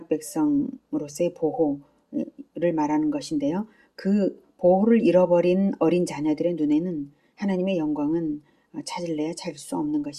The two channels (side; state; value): both; identical; correlation 1.00